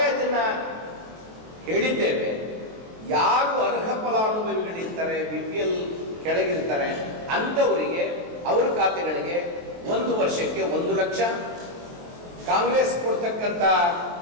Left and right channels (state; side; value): late; left; 23 ms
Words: ಅದನ್ನ ಹೇಳಿದ್ದೇವೆ. ಯಾರು ಅರ್ಹ ಫಲಾನುಭವಿಗಳಿರ್ತಾರೆ, BPL ಕೆಳಗಿರ್ತಾರೆ, ಅಂಥವರಿಗೆ ಅವ್ರ ಖಾತೆಗಳಿಗೆ 1 ವರ್ಷಕ್ಕೆ 1 ಲಕ್ಷ, ಕಾಂಗ್ರೆಸ್ ಕೊಡ್ತಕ್ಕಂಥ